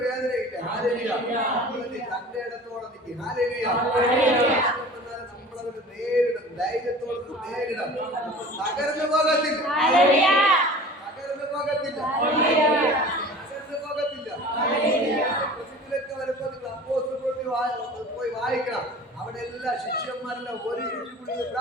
വേദനയില്ല. തന്റെ ഇടത്തോടെ നിൽക്കും. നമ്മളതിന് നേരിടും, ധൈര്യത്തോടെ നേരിടാം. തകർന്നു പോകത്തില്ല. വരുമ്പോ നിങ്ങൾ അപ്പോസ്തലരുടെ പോയി വായിക്കണം. അവിടെ എല്ലാ ശിഷ്യന്മാരെല്ലാം ഒരുമിച്ച് കൂടി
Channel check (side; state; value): both; normal; correlation 0.41